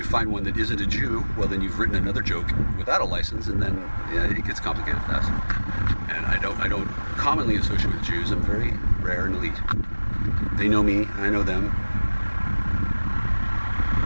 find one that isn't a Jew, well then you've written another joke without a license, and then it gets complicated fast. And I don't commonly associate with Jews. I'm very rare and elite. They know me, I know them.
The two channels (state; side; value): inverted; both; correlation -1.00